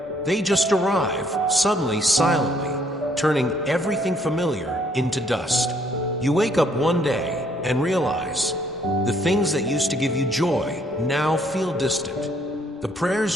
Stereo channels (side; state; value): both; normal; correlation 0.66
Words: They just arrive, suddenly, silently, turning everything familiar into dust. You wake up one day and realize the things that used to give you joy now feel distant. The prayers